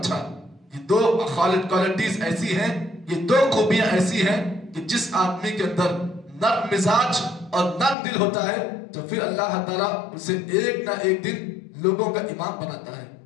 تھا. یہ دو کوالٹیز ایسی ہیں, یہ دو خوبیاں ایسی ہیں کہ جس آدمی کے اندر نرم مزاج اور نرم دل ہوتا ہے تو پھر اللہ تعالیٰ اسے ایک نہ ایک دن لوگوں کا امام بناتا ہے.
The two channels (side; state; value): right; drops out; at 8.0 s